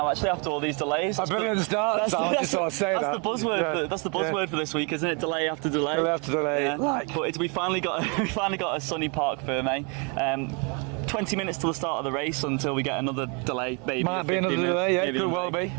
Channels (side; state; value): left; quieter; 34.4 dB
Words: Actually, after all these delays, I've been at the start, so I just thought I'd say that. That's the buzzword. That's the buzzword for this week, isn't it? Delay after delay. Delay after delay. Yeah. Like. But we finally got a sunny Parc Ferme. 20 minutes till the start of the race until we get another delay. Maybe might be another delay. Yeah, could well be.